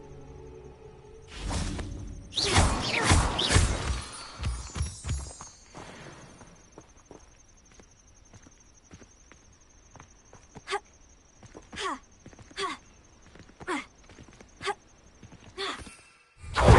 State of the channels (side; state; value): both; identical; correlation 1.00